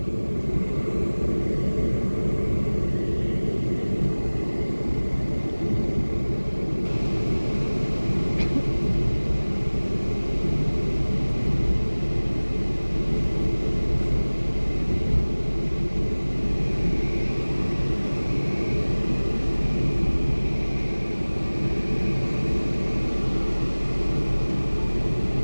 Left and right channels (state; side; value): inverted; both; correlation -1.00